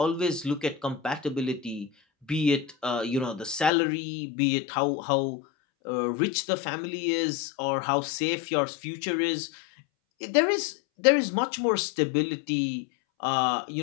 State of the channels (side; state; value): right; drops out; at 3.7 s